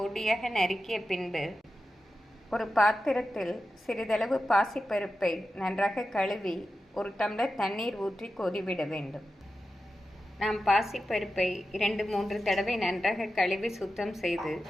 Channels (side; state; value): both; normal; correlation 0.92